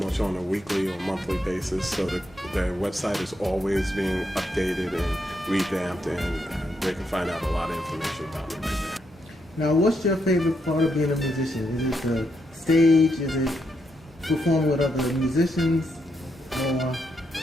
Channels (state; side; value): normal; both; correlation 0.80